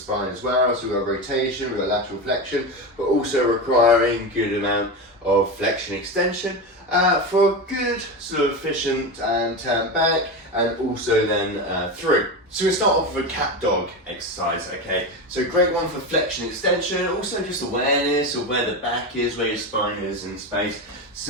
as well. So we've got rotation, we've got lateral flexion, but also requiring good amount of flexion extension for a good sort of efficient and turn back, and also then through. So we start off with a cat dog exercise, okay? So great one for flexion extension, also just awareness of where the back is, where your spine is in space.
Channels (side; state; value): both; normal; correlation 0.20